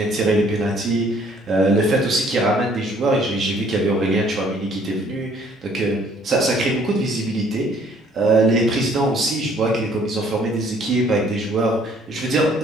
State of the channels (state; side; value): normal; both; correlation 0.60